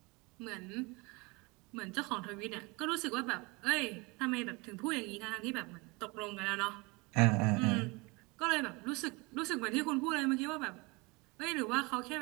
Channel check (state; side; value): quieter; left; 26.5 dB